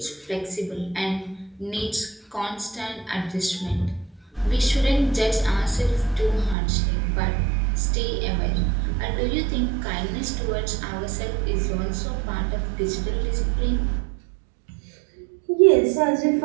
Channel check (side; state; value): left; drops out; at 6.6 s